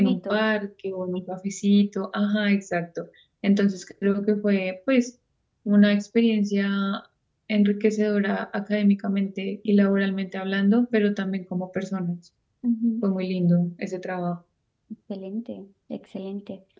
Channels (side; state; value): both; identical; correlation 1.00